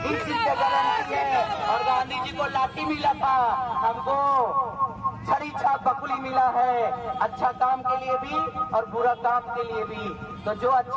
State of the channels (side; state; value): both; identical; correlation 1.00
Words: इस चीज की गारंटी है। और गांधी जी को लाठी मिला था, हमको छड़ी छाप बकुली मिला है, अच्छा काम के लिए भी और बुरा काम के लिए भी। तो जो